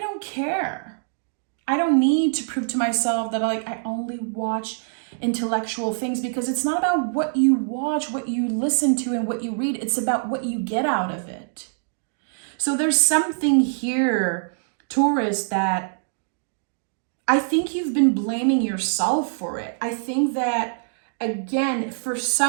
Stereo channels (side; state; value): left; silent; digital silence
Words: care. I don't need to prove to myself that I only watch intellectual things, because it's not about what you watch, what you listen to, and what you read. It's about what you get out of it. So there's something here, Taurus, that I think you've been blaming yourself for it. I think that, again, for